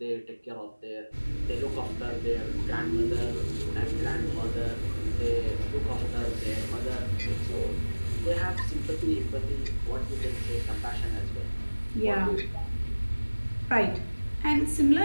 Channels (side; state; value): both; inverted; correlation -1.00